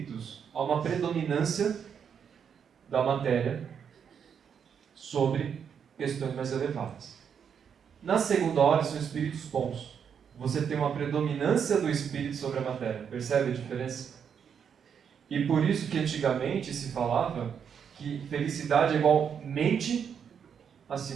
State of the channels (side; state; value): left; quieter; 7.5 dB